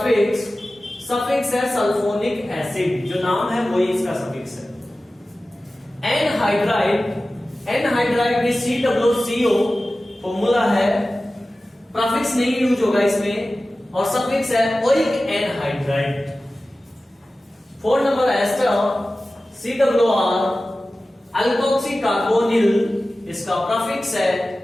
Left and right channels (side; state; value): both; normal; correlation 0.96